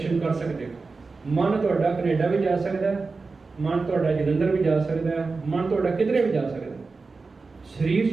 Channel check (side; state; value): left; quieter; 4.1 dB